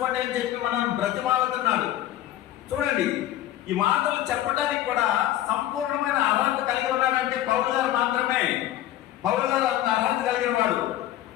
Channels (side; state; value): right; quieter; 13.3 dB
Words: అని చెప్పి మనల్ని బ్రతిమాలుతున్నాడు. చూడండి, ఈ మాటలు చెప్పడానికి కూడా సంపూర్ణమైన అర్హత కలిగి ఉన్నాడంటే పౌలు గారు మాత్రమే. పౌలు గారు అంత అర్హత కలిగిన వాడు.